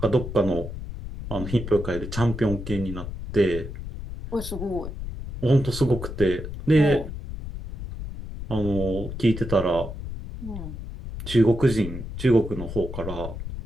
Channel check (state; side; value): noise; left; rumble, 8 dB below the sound